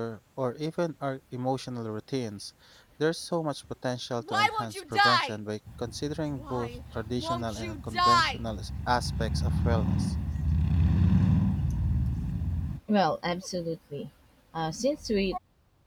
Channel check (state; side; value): identical; both; correlation 1.00